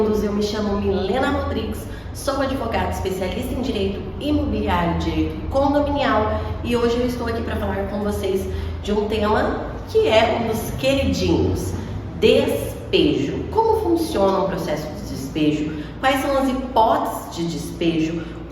Eu me chamo Milena Rodrigues, sou advogada especialista em direito imobiliário, direito condominial, e hoje eu estou aqui para falar com vocês de um tema que é um dos queridinhos: despejo. Como funciona o processo de despejo? Quais são as hipóteses de despejo?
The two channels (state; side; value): identical; both; correlation 1.00